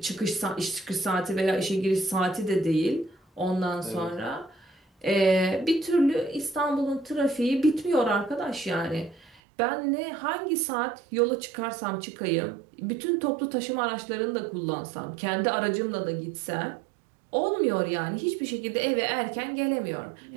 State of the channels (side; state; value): left; drops out; at 9.4 s